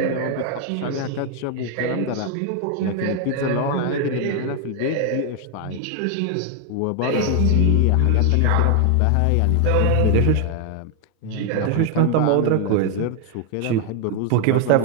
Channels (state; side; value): different; both; correlation 0.00